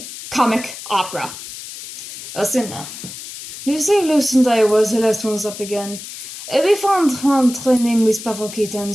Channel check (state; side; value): noise; left; hiss, 12 dB below the sound